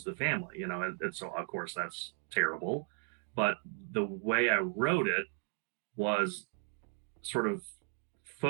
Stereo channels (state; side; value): silent; left; 54 dB below the other